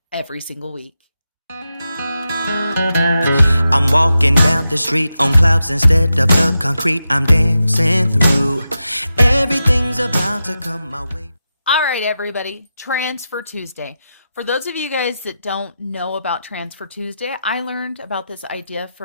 every single week. I'm walking down the street on clouds instead of the concrete I'm dancing through. Everything's about to come my way. All right, everybody, Transfer Tuesday. For those of you guys that don't know about Transfer Tuesday, I learned about this idea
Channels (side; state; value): both; inverted; correlation -0.89